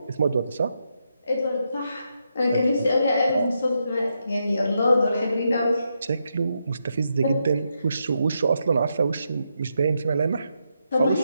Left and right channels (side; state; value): both; inverted; correlation -0.82